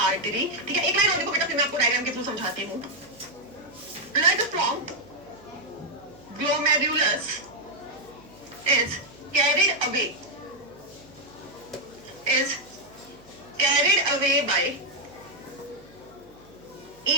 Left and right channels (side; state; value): right; noise; hum, 27 dB below the sound